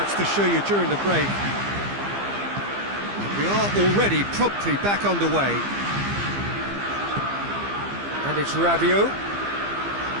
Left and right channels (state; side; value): late; left; 15 ms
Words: to show you during the break. We are already promptly back underway. And it's Rabiot.